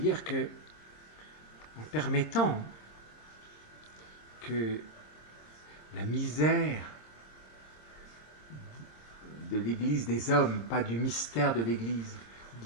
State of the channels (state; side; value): late; right; 26 ms